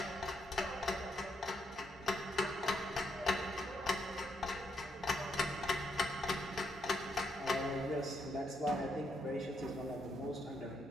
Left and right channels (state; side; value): normal; both; correlation 0.77